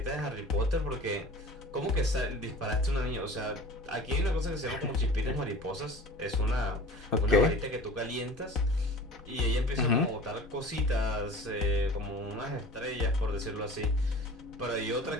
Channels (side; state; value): both; normal; correlation 0.41